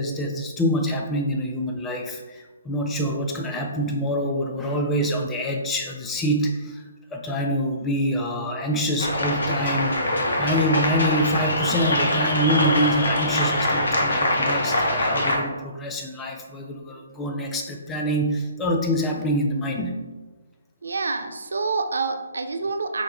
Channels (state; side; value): inverted; both; correlation -0.40